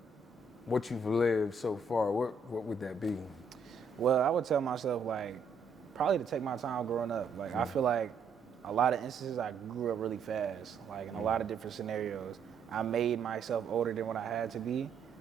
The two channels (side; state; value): left; quieter; 4.4 dB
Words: what you've lived so far, what would that be? Well, I would tell myself, like, probably to take my time growing up. Like, I feel like a lot of instances I grew up really fast, like in a lot of different scenarios. I made myself older than what I had to be,